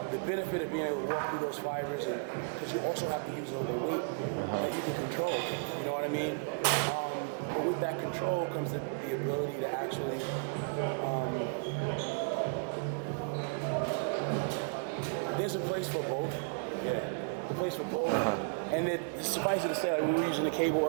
the benefit of being able to walk through those fibers, and because you also have to use a weight that you can control, you know what I mean? But with that control comes the ability to actually there's a place for both. Yeah, the place for both. And suffice it to say, like when we were using the cable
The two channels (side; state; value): left; quieter; 36.1 dB